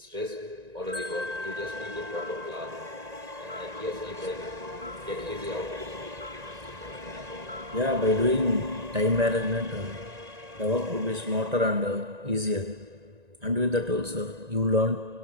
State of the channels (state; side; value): late; left; 1.9 ms